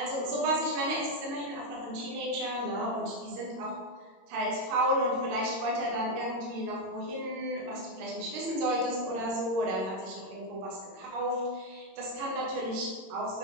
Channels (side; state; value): left; late; 22 ms